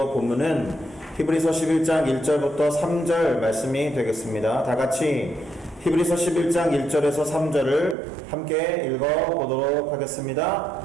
본문은 히브리서 11장 1절부터 3절 말씀이 되겠습니다. 다 같이 히브리서 11장 1절에서 3절을 함께 읽어보도록 하겠습니다.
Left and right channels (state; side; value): drops out; left; at 8.0 s